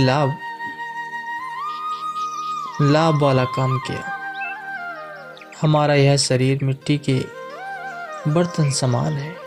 लाभ वाला काम किया। हमारा यह शरीर मिट्टी के बर्तन समान है,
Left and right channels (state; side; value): identical; both; correlation 1.00